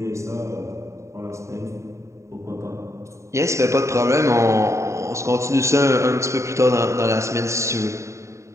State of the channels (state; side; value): late; left; 0.14 ms